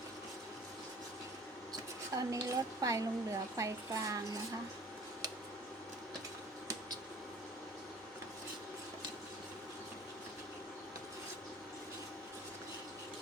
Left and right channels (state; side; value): normal; both; correlation 0.49